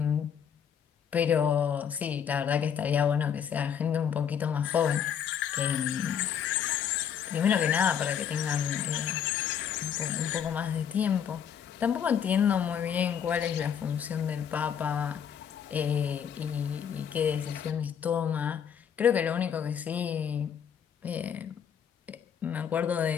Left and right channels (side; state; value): right; quieter; 8.2 dB